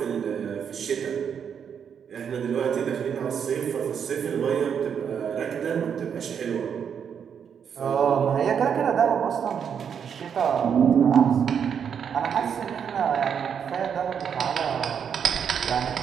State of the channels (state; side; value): quieter; left; 7.6 dB